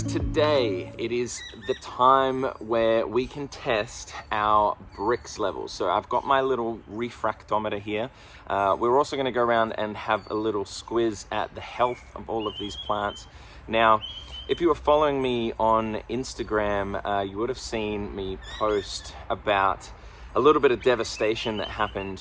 today it is the time where we can test our BRIX levels. So I've got my little refractometer here. We're also going to go around and have a little squiz at the health of all of these plants. Now, if you were following me on Instagram, you would have seen me post about a little bit of devastation that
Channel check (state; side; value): identical; both; correlation 1.00